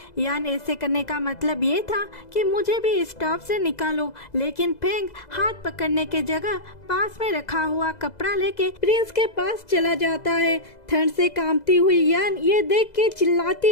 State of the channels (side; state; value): right; late; 2.0 ms